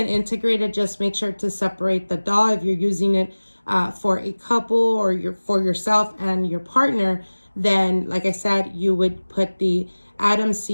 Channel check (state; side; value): inverted; both; correlation -1.00